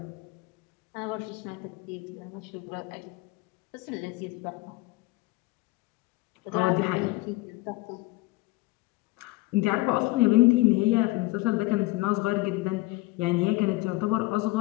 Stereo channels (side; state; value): right; quieter; 21.1 dB